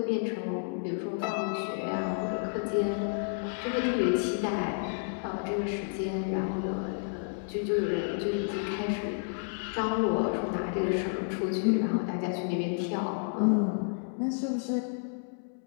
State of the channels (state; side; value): silent; right; digital silence